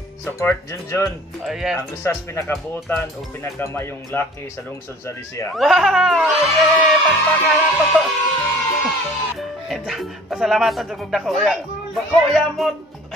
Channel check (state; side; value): normal; both; correlation 0.48